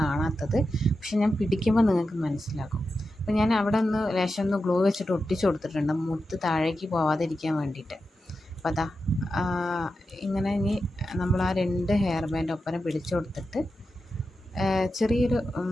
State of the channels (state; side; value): normal; both; correlation 0.90